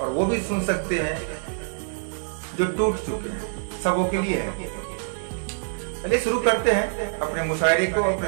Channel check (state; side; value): silent; left; digital silence